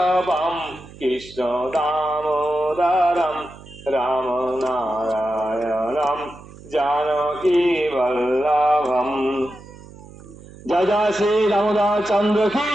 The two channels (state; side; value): noise; right; hum, 19 dB below the sound